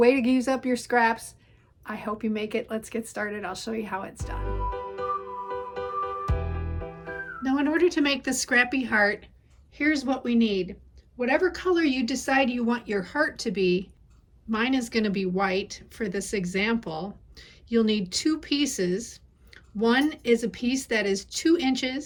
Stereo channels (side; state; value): both; identical; correlation 1.00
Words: to use up your scraps. I hope you make it. Let's get started. I'll show you how it's done. Now, in order to make the Scrappy heart, here's what we need. Whatever color you decide you want your heart to be, mine is going to be white for this example. You'll need two pieces. One is a piece that is 2